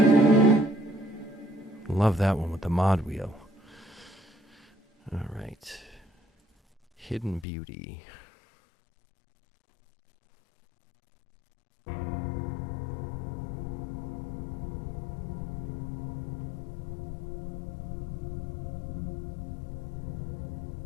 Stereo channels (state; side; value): drops out; right; at 7.5 s